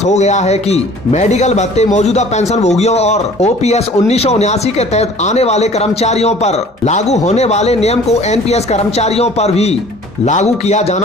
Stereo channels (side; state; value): both; normal; correlation 0.49